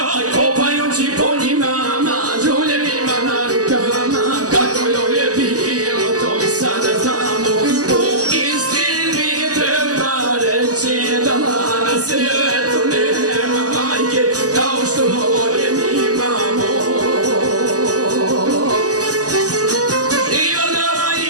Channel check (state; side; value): late; left; 0.67 ms